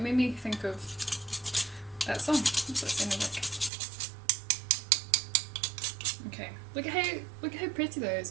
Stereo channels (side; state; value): left; drops out; at 3.7 s